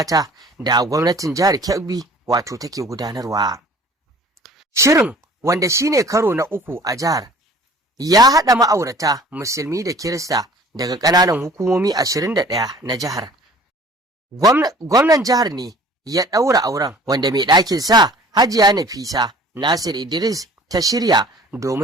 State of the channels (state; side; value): normal; both; correlation 0.49